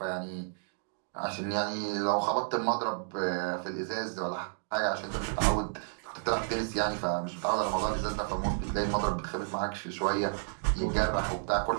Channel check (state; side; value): silent; left; digital silence